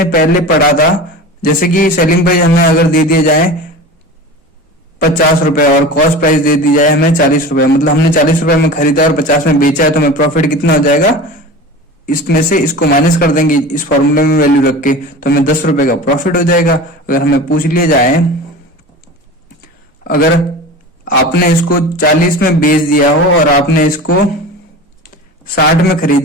पहले पढ़ा था। जैसे कि सेलिंग प्राइस हमें अगर दे दिया जाए 50 रुपए और कॉस्ट प्राइस दे दी जाए हमें 40 रुपए, मतलब हमने 40 रुपए में खरीदा और 50 में बेचा है, तो हमें प्रॉफिट कितना हो जाएगा, इसमें से इसको माइनस कर देंगे इस फॉर्मूले में वैल्यू रख के, तो हमें 10 रुपए का प्रॉफिट हो जाएगा। अगर हमें पूछ लिया जाए अगर आपने इसको 40 में बेच दिया हो और आपने इसको 60 में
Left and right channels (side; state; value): both; normal; correlation 0.33